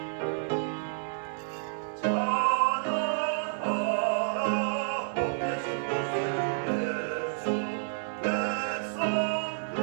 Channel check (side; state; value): left; silent; 58 dB below the other